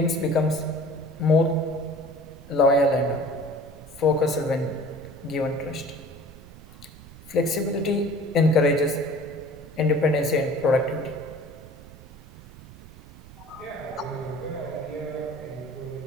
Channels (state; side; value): noise; right; rumble, 19 dB below the sound